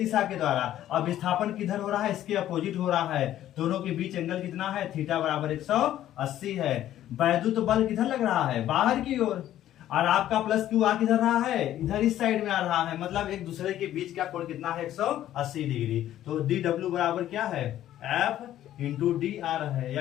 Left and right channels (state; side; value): quieter; right; 12.5 dB